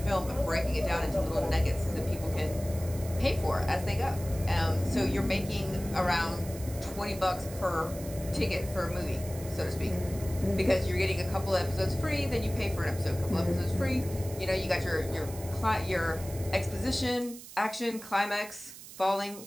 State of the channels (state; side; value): noise; right; hiss, 15 dB below the sound